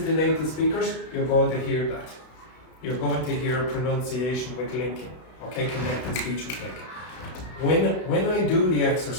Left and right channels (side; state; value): right; late; 32 ms